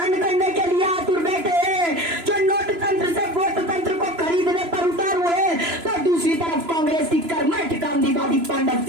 करने के लिए आतुर बैठे हैं, जो नोट तंत्र से वोट तंत्र को खरीदने पर उतार हुए। तो दूसरी तरफ कांग्रेस की कर्मठ गांधीवादी पांडव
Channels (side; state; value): left; late; 3.0 ms